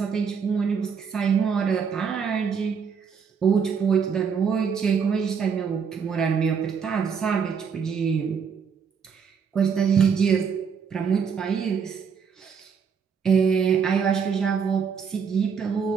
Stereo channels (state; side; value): quieter; left; 6.5 dB